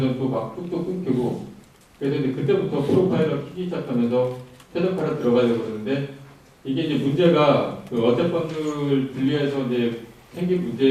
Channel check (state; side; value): identical; both; correlation 1.00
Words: 또 막 뚝뚝 끊기고 그래서 이제 그때부터 프로파일러 키기 시작하면서 최적화로 들어가려고 그러는데 이게 이제 문제가 그 어셈버들 분리해서 이제 생긴